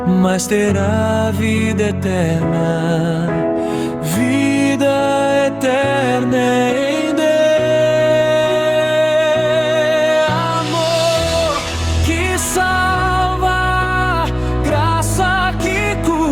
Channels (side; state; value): both; identical; correlation 1.00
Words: mas terá vida eterna. Vida eterna em Deus.